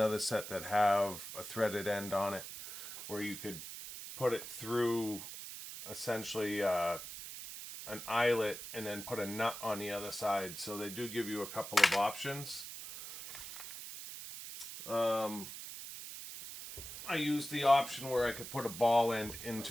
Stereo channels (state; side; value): noise; right; hiss, 10 dB below the sound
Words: set that have a threaded end on it where you could put it through essentially an eyelet and then put a nut on the other side. So they do give you a couple of options. I used the option where I could put a ball end